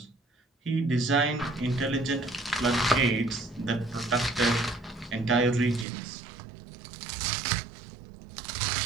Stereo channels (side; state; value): left; drops out; at 5.9 s